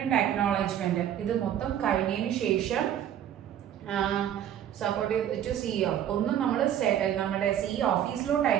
അക്നോളജ്മെന്റ് ഇത് മൊത്തം കഴിഞ്ഞതിന് ശേഷം സപ്പോർട്ട് ടു CEO ഒന്നും നമ്മൾ നമ്മുടെ CEO ഓഫീസിലോട്ട്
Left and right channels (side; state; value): left; quieter; 10.3 dB